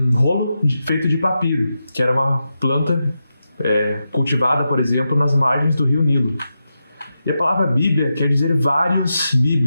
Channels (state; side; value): inverted; both; correlation -0.89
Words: rolo feito de papiro, que era uma planta cultivada, por exemplo, nas margens do rio Nilo. E a palavra Bíblia quer dizer vários